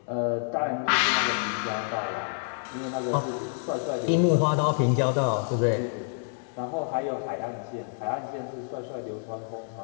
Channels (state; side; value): silent; right; 59 dB below the other